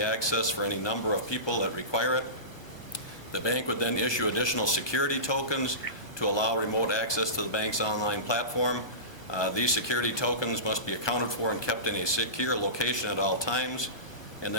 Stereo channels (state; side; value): late; right; 1.1 ms